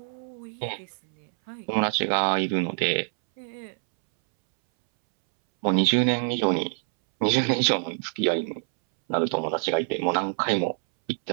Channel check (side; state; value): left; silent; 61 dB below the other